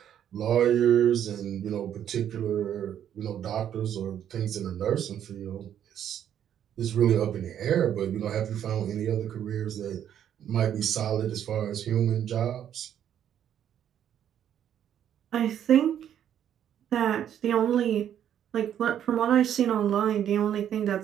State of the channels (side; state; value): left; quieter; 9.9 dB